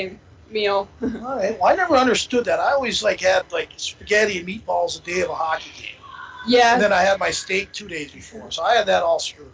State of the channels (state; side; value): identical; both; correlation 1.00